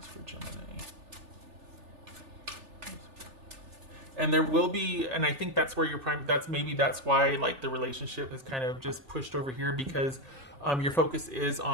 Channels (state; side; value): late; left; 3.4 ms